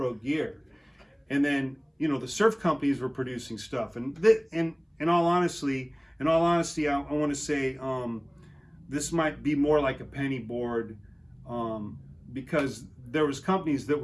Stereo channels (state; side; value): identical; both; correlation 1.00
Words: gear. And then, the surf companies were producing stuff. And in all honesty, I want to say this might be more like a penny board, because there was companies that